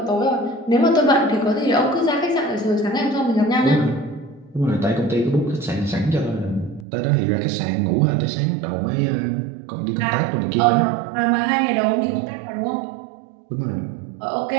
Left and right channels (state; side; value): drops out; left; at 6.9 s